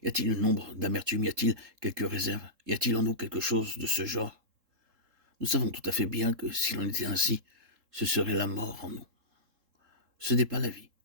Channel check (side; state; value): left; late; 3.7 ms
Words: Y a-t-il une ombre d'amertume? Y a-t-il quelques réserves? Y a-t-il en nous quelque chose de ce genre? Nous savons tout à fait bien que s'il en était ainsi, ce serait la mort en nous. Ce n'est pas la vie.